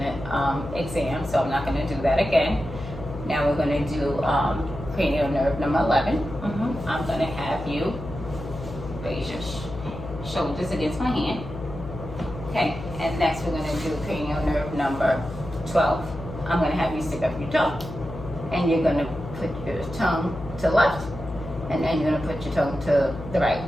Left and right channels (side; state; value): left; noise; hum, 11 dB below the sound